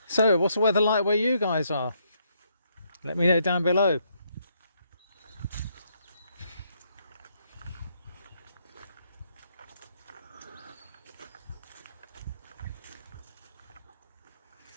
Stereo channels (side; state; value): both; inverted; correlation -0.74